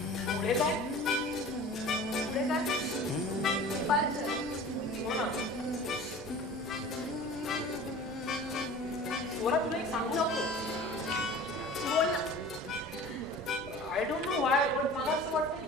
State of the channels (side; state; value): both; normal; correlation 0.40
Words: पुढे काय? पुढे काय? डिपार्चर. हो ना. स्वरा तुला एक सांगू नको. बोल ना. आय डोंट नो वाय पण मला असं वाटतं